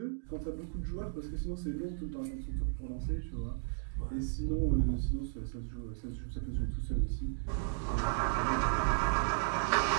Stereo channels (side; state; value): left; silent; digital silence